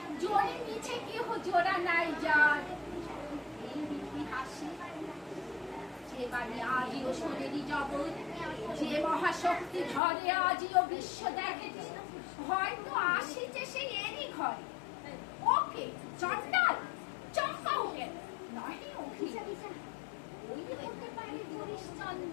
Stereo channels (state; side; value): drops out; right; at 10.0 s